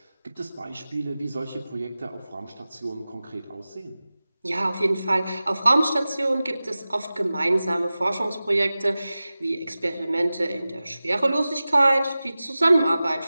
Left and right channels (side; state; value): both; inverted; correlation -0.96